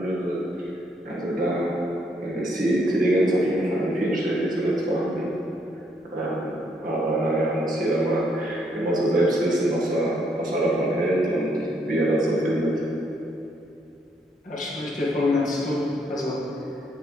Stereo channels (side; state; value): both; normal; correlation 0.72